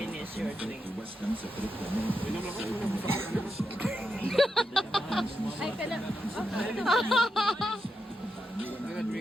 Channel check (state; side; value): normal; both; correlation 0.85